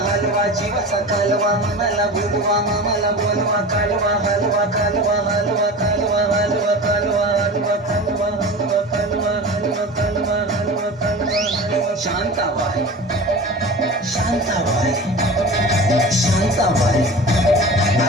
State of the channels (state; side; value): normal; both; correlation 0.34